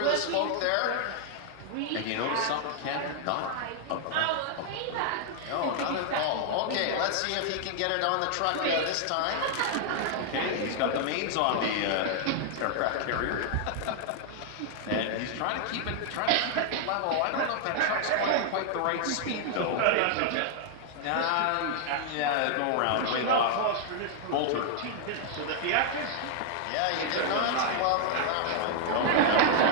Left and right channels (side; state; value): both; different; correlation 0.00